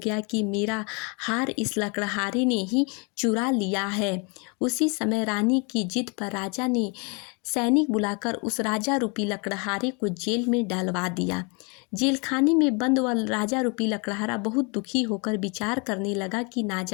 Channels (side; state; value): right; quieter; 32.6 dB